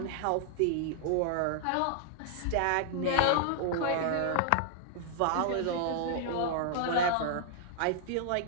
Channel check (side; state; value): both; different; correlation -0.01